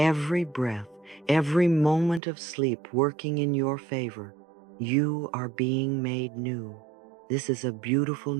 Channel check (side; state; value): left; drops out; at 2.2 s